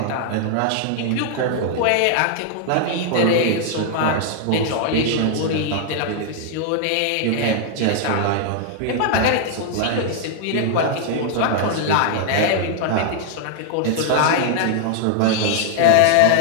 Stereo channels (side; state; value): both; different; correlation 0.00